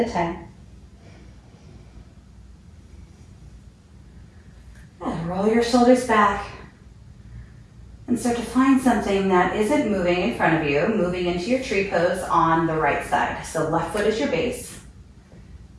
time. And roll your shoulders back. And start to find something that isn't moving in front of you, moving into your tree pose on the right side. So left foot is your base.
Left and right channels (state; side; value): identical; both; correlation 1.00